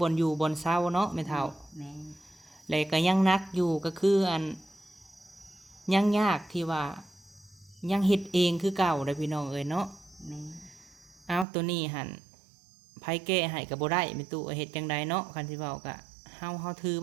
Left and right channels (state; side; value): drops out; left; at 11.5 s